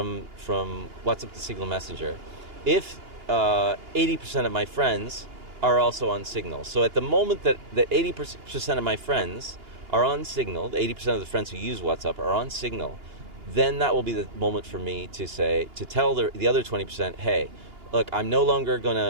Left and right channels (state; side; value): late; left; 2.8 ms